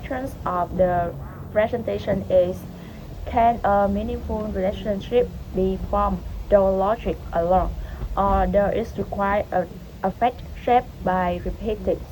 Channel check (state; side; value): identical; both; correlation 1.00